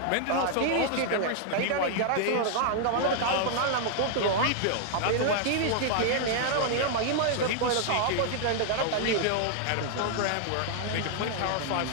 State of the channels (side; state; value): both; different; correlation -0.01